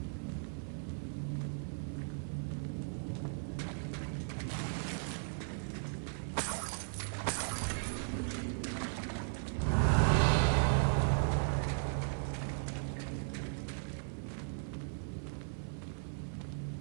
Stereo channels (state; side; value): silent; left; 53 dB below the other